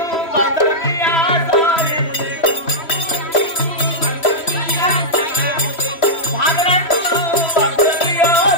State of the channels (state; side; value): late; right; 3.1 ms